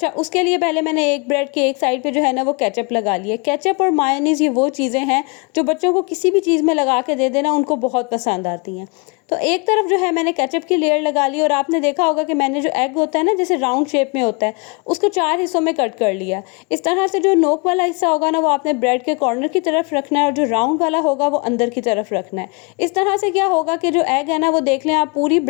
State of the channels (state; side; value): quieter; right; 31.7 dB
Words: उसके लिए पहले मैंने एक ब्रेड के एक साइड पे जो है ना वो केचप लगा लिया। केचप और मायोनीज़ ये वो चीज़ें हैं जो बच्चों को किसी भी चीज़ में लगा के दे देना उनको बहुत पसंद आती हैं। तो एक तरफ जो है मैंने केचप की लेयर लगा ली, और आपने देखा होगा कि मैंने जो एग होता है ना जैसे राउंड शेप में होता है उसको 4 हिस्सों में कट कर लिया। इस तरह से जो नोक वाला हिस्सा होगा ना वो आपने ब्रेड के कॉर्नर की तरफ रखना है, और जो राउंड वाला होगा वो अंदर की तरफ रखना है। इस तरह से क्या होगा कि जो एग है ना वो देख लें आप पूरी